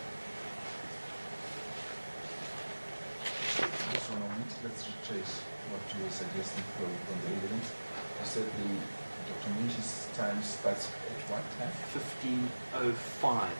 Just one moment, let's retrace what you were suggesting from the evidence. You said Dr. Munshi's time starts at what time? 15:05.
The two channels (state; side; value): inverted; both; correlation -1.00